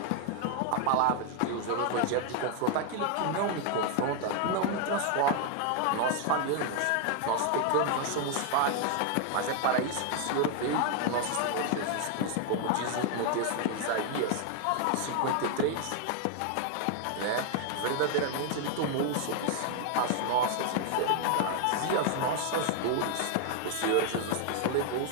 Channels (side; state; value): both; different; correlation 0.00